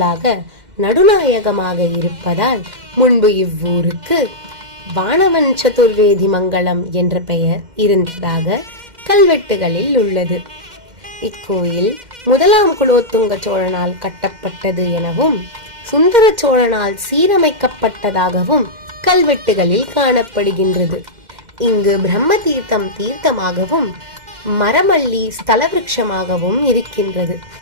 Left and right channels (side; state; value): left; late; 2.1 ms